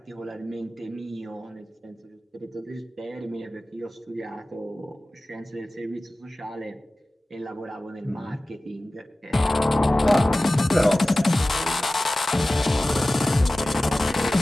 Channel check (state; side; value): normal; both; correlation 0.97